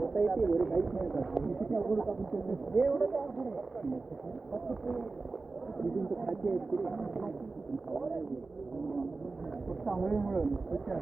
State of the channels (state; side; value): quieter; left; 3.8 dB